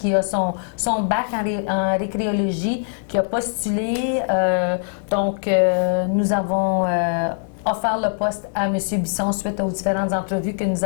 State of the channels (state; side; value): silent; right; digital silence